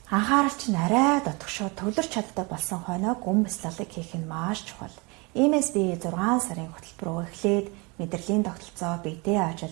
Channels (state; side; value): quieter; left; 28.3 dB